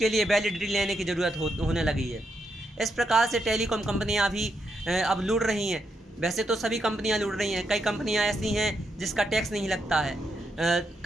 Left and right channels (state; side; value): normal; both; correlation 0.81